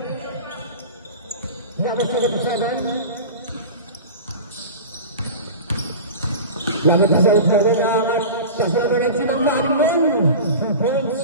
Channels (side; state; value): both; inverted; correlation -0.33